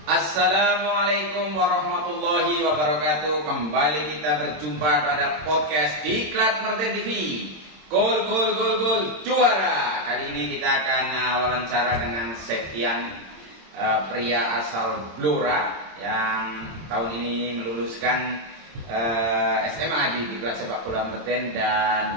Assalamualaikum warahmatullahi wabarakatuh. Kembali kita berjumpa pada podcast Diklat Martin TV. Gol juara. Kali ini kita akan wawancara dengan Septian, pria asal Blora yang tahun ini meluluskan SMA di Diklat Sepak Bola Martin,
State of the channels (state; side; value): late; left; 26 ms